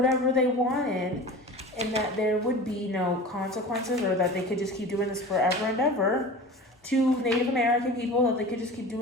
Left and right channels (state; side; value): normal; both; correlation 0.36